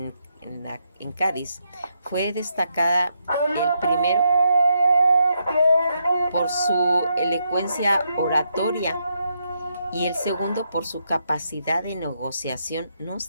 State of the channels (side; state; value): both; inverted; correlation -0.79